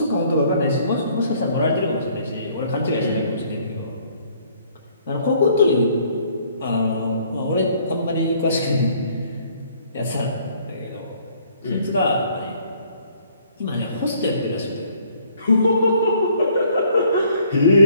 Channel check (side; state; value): both; inverted; correlation -0.61